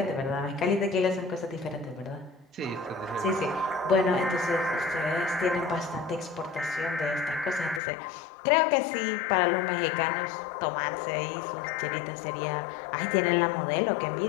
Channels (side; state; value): right; drops out; at 7.8 s